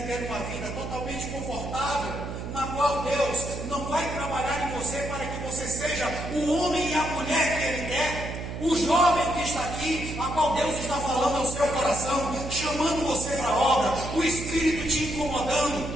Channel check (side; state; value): right; noise; hum, 7 dB below the sound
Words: ter uma vida totalmente confortável, na qual Deus não vai trabalhar em você para que você seja o homem e a mulher que Ele quer? O jovem que está aqui, a qual Deus está falando ao seu coração, chamando você para a obra, o Espírito te